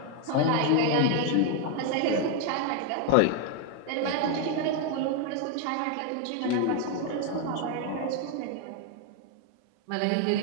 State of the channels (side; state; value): both; different; correlation 0.01